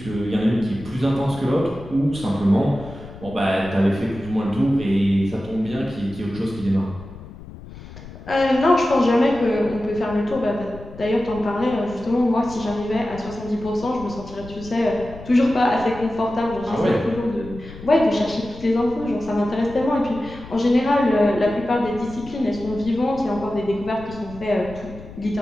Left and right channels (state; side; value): noise; left; rumble, 16 dB below the sound